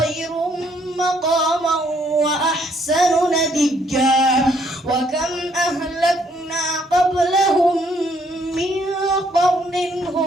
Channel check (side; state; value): both; normal; correlation 0.68